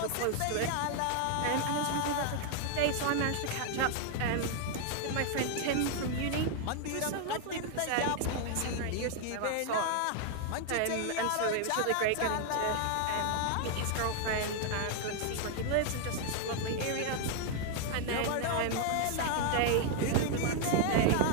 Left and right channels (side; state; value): both; different; correlation 0.00